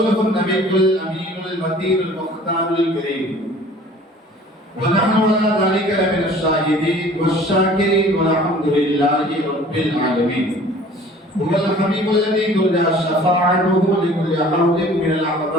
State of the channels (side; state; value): both; normal; correlation 0.49